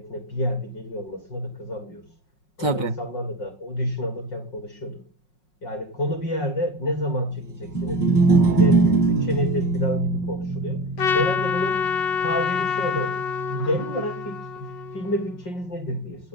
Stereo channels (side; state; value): right; late; 5.5 ms